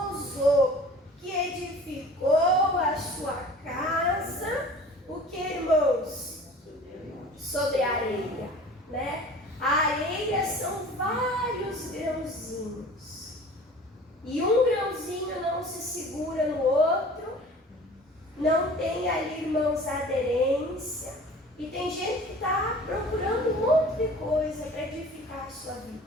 que edificou a sua casa tem ali, irmãos, a aderência. E tem gente que está procurando um monte de coisa para edificar a sua vida.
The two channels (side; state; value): both; normal; correlation 0.44